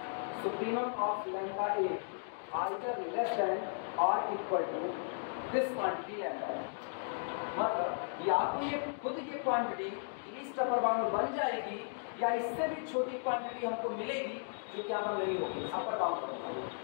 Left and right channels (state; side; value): silent; right; digital silence